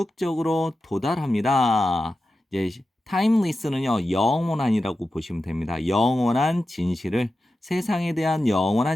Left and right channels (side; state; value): both; normal; correlation 0.92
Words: 도달합니다. 이제 timeless는요, 영원한이라고 보시면 됩니다. 영원한 진실을, 세상에 대한